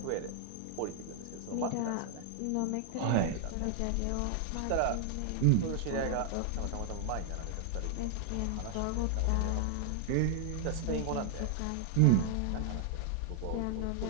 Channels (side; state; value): both; different; correlation 0.00